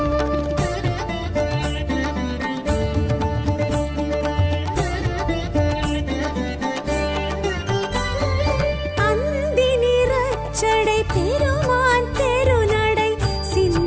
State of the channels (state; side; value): identical; both; correlation 1.00